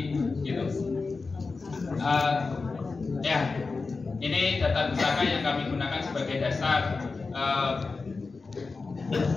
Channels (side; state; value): right; quieter; 4.2 dB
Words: gitu. Ya, ini data pusaka yang kami gunakan sebagai dasar